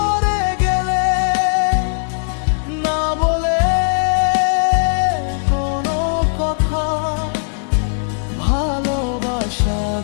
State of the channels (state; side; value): silent; right; digital silence